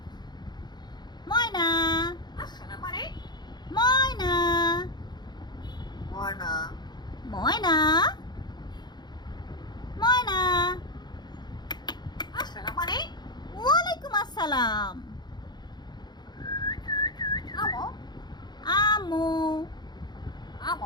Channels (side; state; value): right; late; 0.21 ms